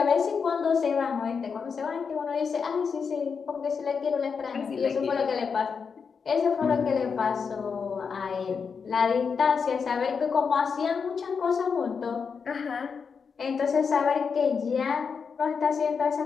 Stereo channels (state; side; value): quieter; right; 5.8 dB